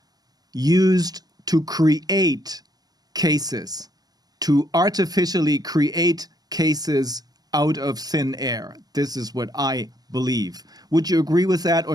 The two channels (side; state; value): left; late; 0.19 ms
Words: used to create cases, to artificially create cases out of thin air? This is what I believe. Would you agree with that,